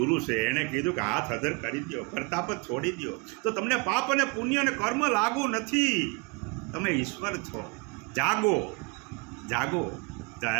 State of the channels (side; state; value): left; quieter; 30.6 dB